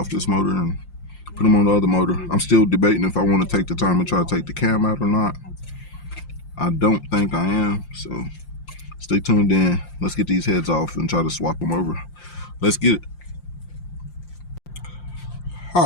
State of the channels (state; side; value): late; right; 5.7 ms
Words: this motor and put them on the other motor. I'm still debating if I want to take the time and try to take the cam out or not. I don't think I am, so stay tuned in. Let's get these heads off and try to swap them over. Let's get it.